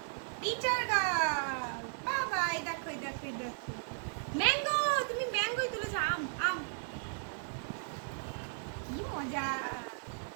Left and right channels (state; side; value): silent; left; digital silence